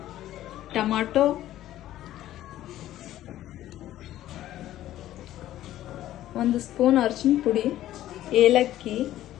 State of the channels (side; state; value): right; quieter; 13.5 dB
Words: ಟೊಮಾಟೊ, ಒಂದು ಸ್ಪೂನ್ ಅರಿಶಿನ ಪುಡಿ, ಏಲಕ್ಕಿ,